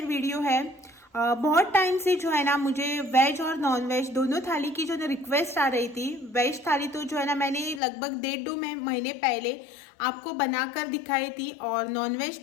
वीडियो है। बहुत टाइम से जो है ना मुझे वेज और नॉनवेज दोनों थाली की जो ना रिक्वेस्ट आ रही थी। वेज थाली तो जो है ना मैंने लगभग 1.5-2 महीने पहले आपको बनाकर दिखाई थी और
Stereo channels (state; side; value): drops out; right; at 7.8 s